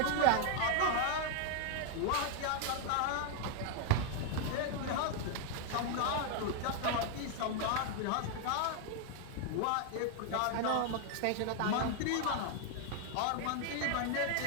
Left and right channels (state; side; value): different; both; correlation 0.00